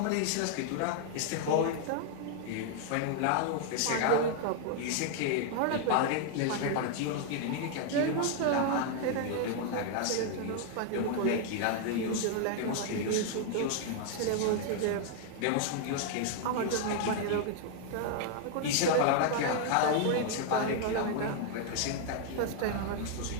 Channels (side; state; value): both; different; correlation 0.00